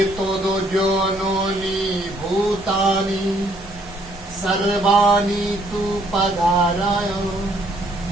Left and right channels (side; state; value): both; normal; correlation 0.66